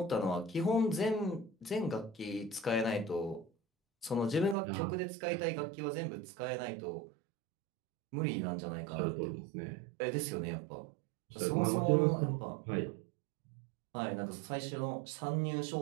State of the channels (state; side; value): drops out; left; at 4.5 s